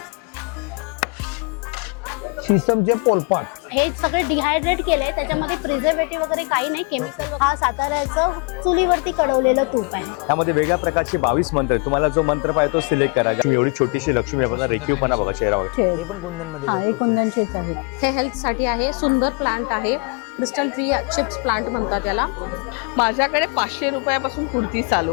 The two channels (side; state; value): right; quieter; 34.1 dB